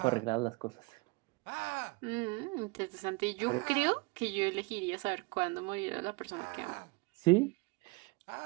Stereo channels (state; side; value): quieter; left; 27.7 dB